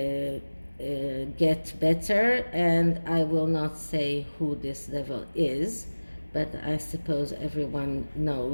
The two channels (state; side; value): inverted; both; correlation -1.00